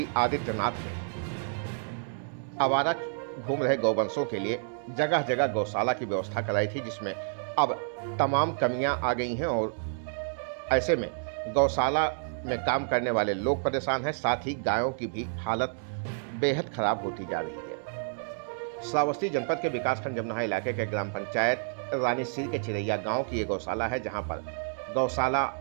आदित्यनाथ ने आवारा घूम रहे गौवंशों के लिए जगह जगह गौशाला की व्यवस्था कराई थी, जिसमें अब तमाम कमियां आ गई हैं और ऐसे में गौशाला में काम करने वाले लोग परेशान हैं, साथ ही गायों की भी हालत बेहद खराब होती जा रही है। श्रावस्ती जनपद के विकासखंड जमनाहा इलाके के ग्राम पंचायत रानीसीर के चिरैया गांव की ये गौशाला है, जहां पर गौशाला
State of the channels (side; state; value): left; silent; digital silence